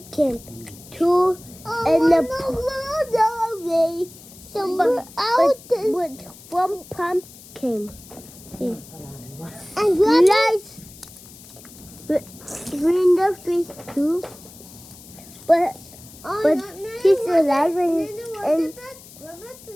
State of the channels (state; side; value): noise; left; hiss, 20 dB below the sound